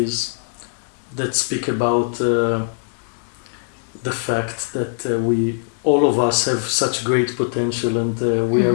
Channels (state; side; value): silent; right; digital silence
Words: that speak about the fact that all of us have such great potential, and we are